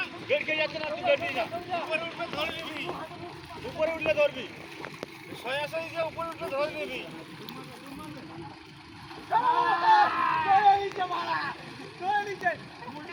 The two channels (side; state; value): both; identical; correlation 1.00